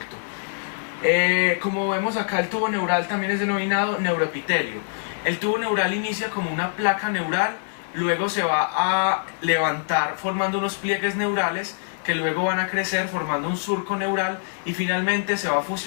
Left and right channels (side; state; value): right; silent; digital silence